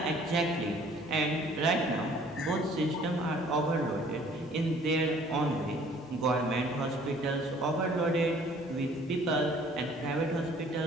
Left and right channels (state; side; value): normal; both; correlation 0.56